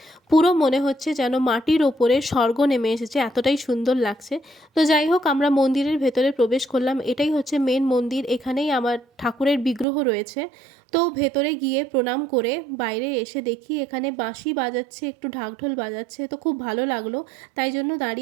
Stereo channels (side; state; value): left; drops out; at 9.9 s